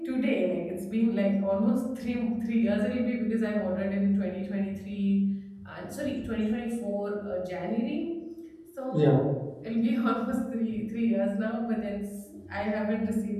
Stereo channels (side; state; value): both; identical; correlation 1.00